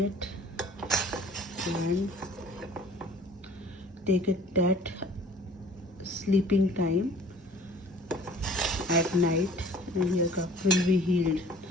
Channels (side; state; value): both; normal; correlation 0.50